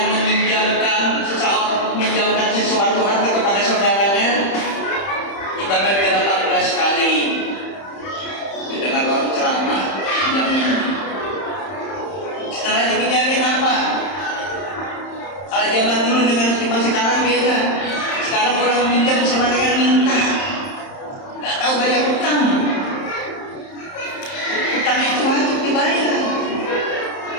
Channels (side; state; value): right; late; 31 ms